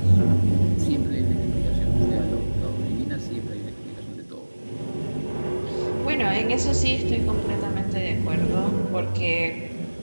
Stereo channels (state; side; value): inverted; both; correlation -1.00